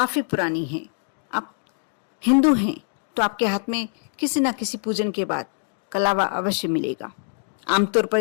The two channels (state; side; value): silent; right; digital silence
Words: पुरानी है। आप हिंदू हैं तो आपके हाथ में किसी न किसी पूजन के बाद कलावा अवश्य मिलेगा। आमतौर पर